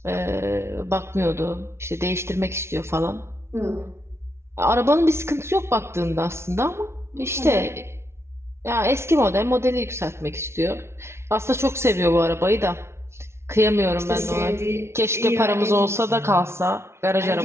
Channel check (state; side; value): late; left; 0.13 ms